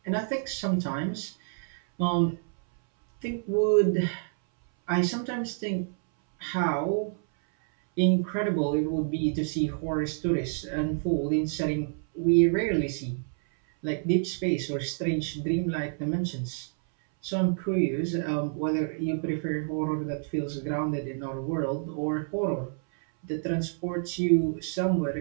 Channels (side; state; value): left; silent; 59 dB below the other